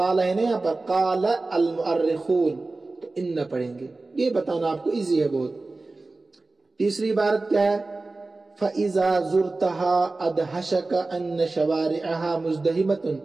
ہے نا یہاں پر قال المؤرخون تو ان پڑھیں گے. یہ بتانا آپ کو ایزی ہے بہت. تیسری عبارت کیا ہے؟ فَإِذَا زُرْتَهَا أَدْهَشَكَ أَنَّ شَوَارِعَهَا مُزْدَحِمَةٌ.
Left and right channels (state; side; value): quieter; left; 3.3 dB